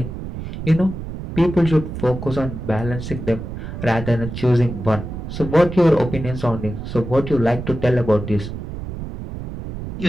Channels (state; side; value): noise; right; rumble, 8 dB below the sound